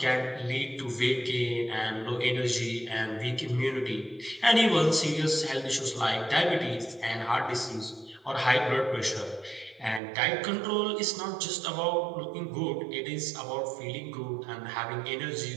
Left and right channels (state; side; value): drops out; left; at 10.0 s